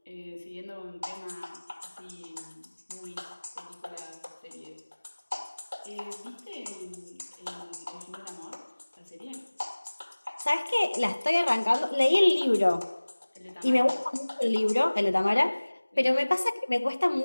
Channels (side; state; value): both; inverted; correlation -1.00